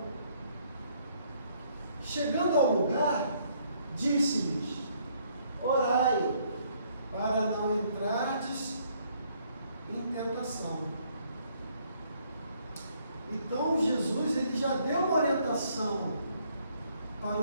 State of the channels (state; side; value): inverted; both; correlation -0.67